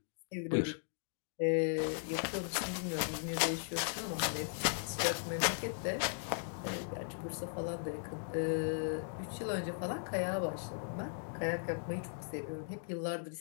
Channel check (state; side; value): silent; right; digital silence